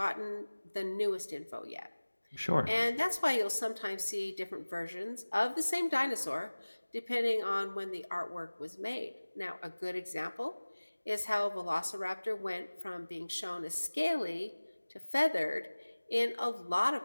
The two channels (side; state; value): both; inverted; correlation -1.00